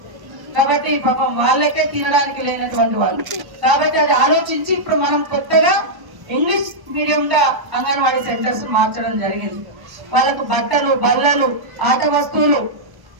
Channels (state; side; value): late; left; 1.1 ms